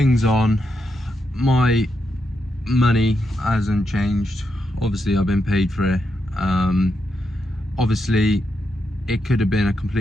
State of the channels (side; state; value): both; normal; correlation 0.83